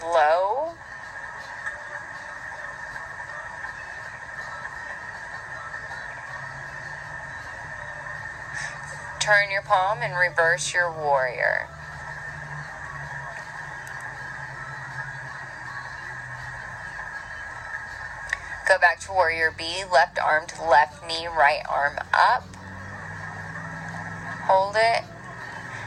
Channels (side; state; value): both; identical; correlation 1.00